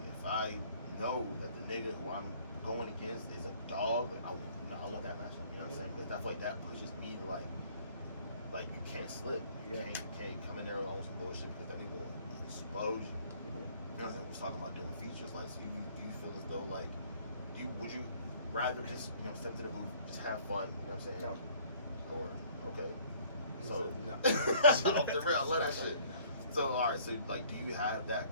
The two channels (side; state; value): both; inverted; correlation -0.56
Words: I know that the nigga who I'm going against is a dog, like, I want that matchup, you know what I'm saying, because I feel like that pushes me to like you can't slip, you Yeah. can't come in there on some bullshit because that nigga will expose you. You know what I'm saying? We was talking about doing features. Like, so do you feel as though like, would you rather just step to the booth, just have fun? You know what I'm saying? No. Or okay. He So said no. off the real, I love that shit. So all right. So like, do you have that